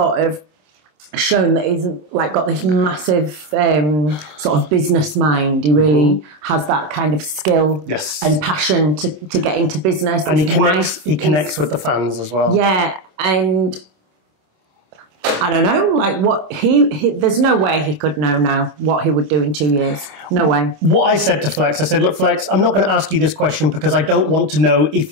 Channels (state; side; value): late; left; 26 ms